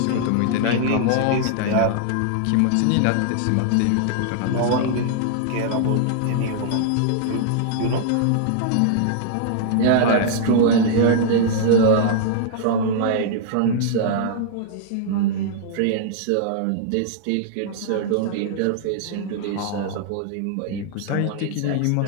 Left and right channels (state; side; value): different; both; correlation -0.01